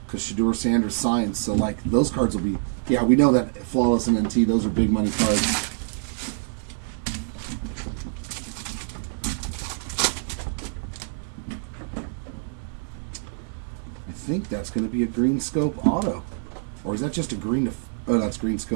Because Shedeur Sanders signed. So, like, those cards will be... Yeah, we know that Flawless and NT, those are big money cards. I think that's going to be a green scope auto. Or is that just a green... Oh, that's green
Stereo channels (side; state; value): left; silent; 61 dB below the other